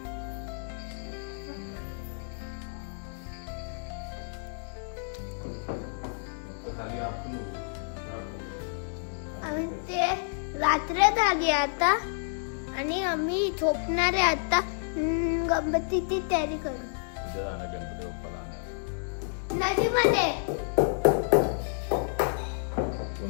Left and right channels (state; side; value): silent; right; digital silence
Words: खाली आपण आम्ही ते रात्र झाली आता आणि आम्ही झोपणार आहे आता. गणपतीची तयारी करू नदीमध्ये.